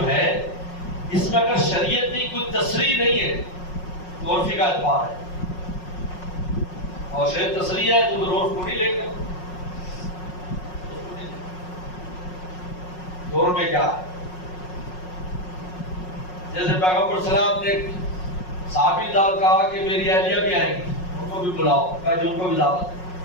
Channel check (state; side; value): late; right; 5.5 ms